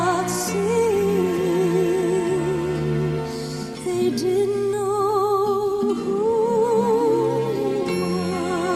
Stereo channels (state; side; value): identical; both; correlation 1.00